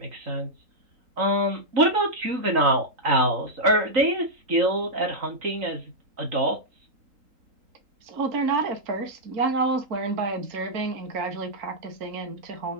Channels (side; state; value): left; late; 3.9 ms